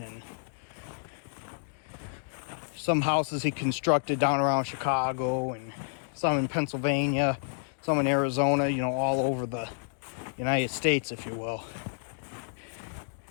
some houses he constructed down around Chicago, and some in Pennsylvania, some in Arizona, you know, all over the United States, if you will.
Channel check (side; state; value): right; silent; digital silence